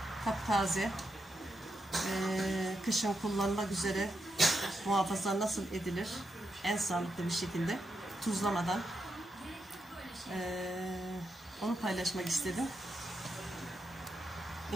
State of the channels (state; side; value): normal; both; correlation 0.85